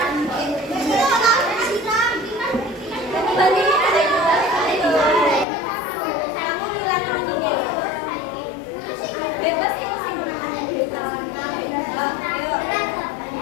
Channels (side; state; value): right; drops out; at 5.5 s